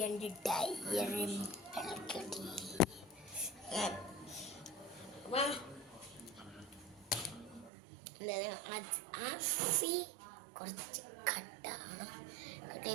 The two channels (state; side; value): drops out; left; at 7.7 s